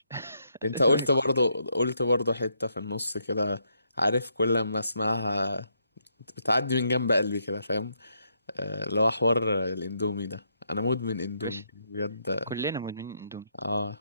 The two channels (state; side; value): inverted; both; correlation -0.77